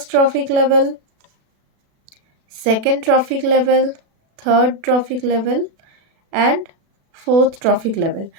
trophic level, second trophic level, third trophic level and fourth trophic level.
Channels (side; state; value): left; late; 36 ms